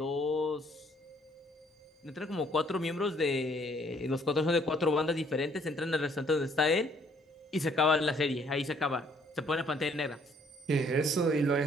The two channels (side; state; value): both; normal; correlation 0.64